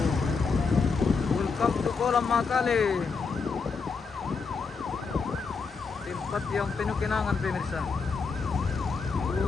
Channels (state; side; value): quieter; right; 4.9 dB